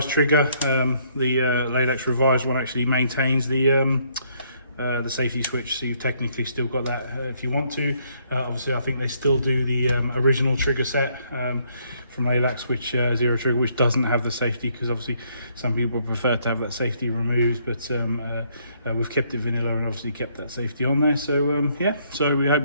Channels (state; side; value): inverted; both; correlation -0.68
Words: trigger, the Laylax revised one actually maintains the safety switch, so you've technically still got that if you want to. Obviously I think they still do the original trigger set from Laylax, which zero trigger, which doesn't have the safety, because obviously some people prefer to have that safety removed, but we've kept it vanilla and obviously kept that safety on there. So yeah, so we hope